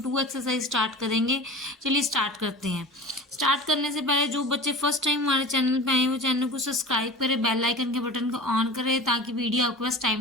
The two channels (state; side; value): normal; both; correlation 0.36